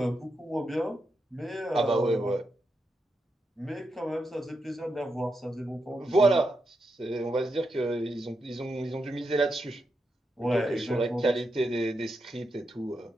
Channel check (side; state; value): both; normal; correlation 0.85